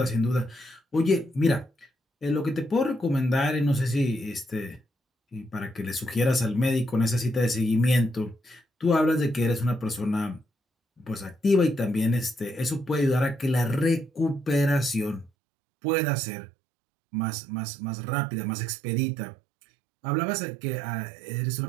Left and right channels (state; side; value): drops out; left; at 15.3 s